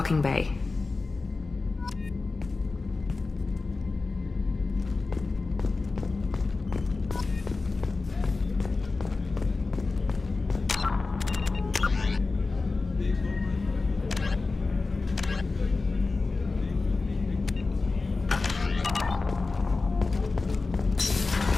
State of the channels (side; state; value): right; quieter; 3.8 dB